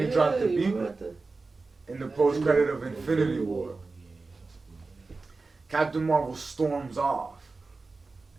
he dropped the beeper. In the post-credit of Infinity War. Captain Marvel storms off.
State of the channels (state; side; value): quieter; left; 3.8 dB